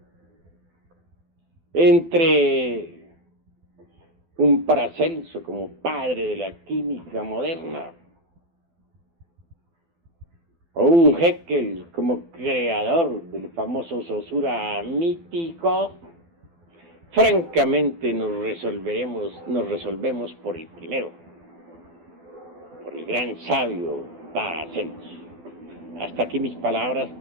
entre un Paracelso como padre de la química moderna, o un Haeckel como creador del famoso Saussure mítico, francamente nos resolvemos por el primero, por el gran sabio Paracelso. Hasta aquí mis palabras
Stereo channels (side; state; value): left; late; 12 ms